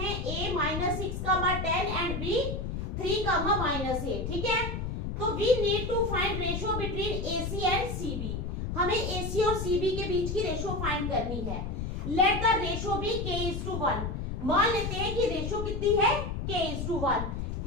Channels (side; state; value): left; noise; rumble, 3 dB below the sound